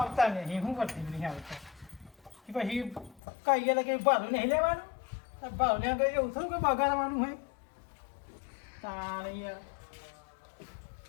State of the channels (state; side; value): drops out; right; at 3.2 s